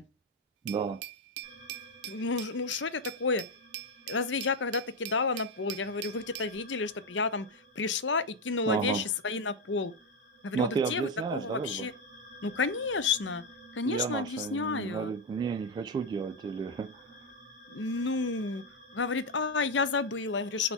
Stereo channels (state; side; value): normal; both; correlation 0.06